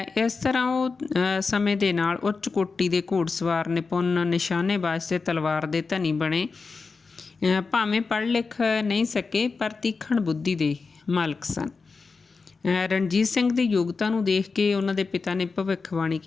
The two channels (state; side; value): quieter; right; 4.5 dB